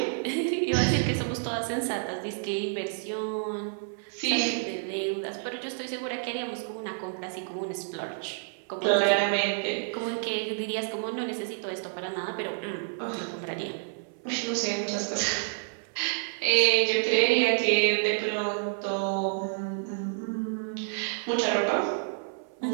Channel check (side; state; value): left; silent; 58 dB below the other